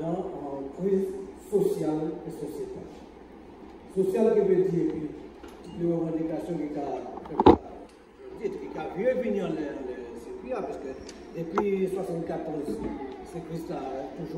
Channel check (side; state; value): both; identical; correlation 1.00